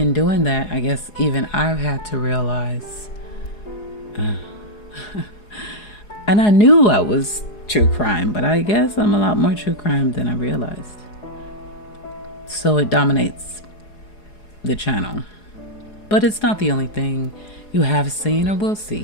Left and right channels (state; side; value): late; right; 4.8 ms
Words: doing that, I guess even I've had to realize, and I knew I was true crime, but I guess I'm a lot more true crime than I realized. So it dominates the channel. But it's not the only thing you have seen or will see